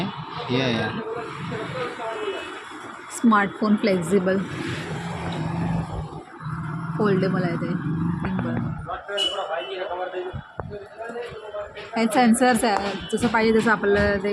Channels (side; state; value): both; identical; correlation 1.00